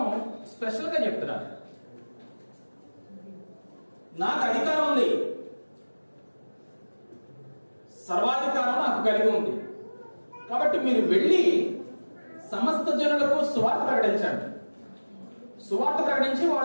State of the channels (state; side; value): inverted; both; correlation -1.00